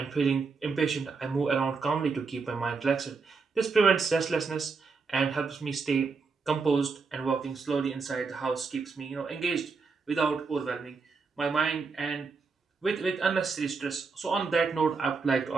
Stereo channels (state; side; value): quieter; left; 4.7 dB